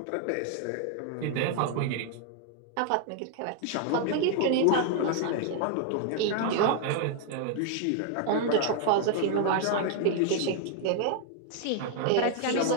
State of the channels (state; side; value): different; both; correlation 0.00